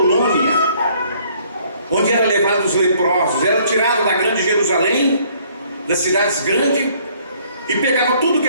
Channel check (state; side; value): inverted; both; correlation -0.62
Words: onde eram levados os leprosos. Era tirado da grande Jerusalém, das cidades grandes, e pegava tudo